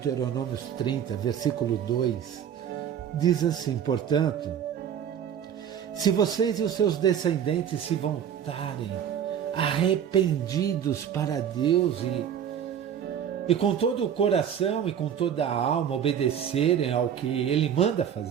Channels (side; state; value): left; quieter; 8.9 dB